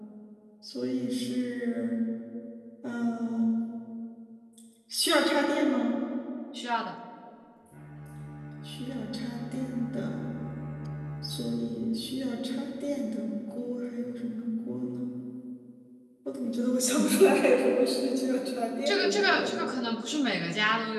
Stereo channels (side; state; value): both; identical; correlation 1.00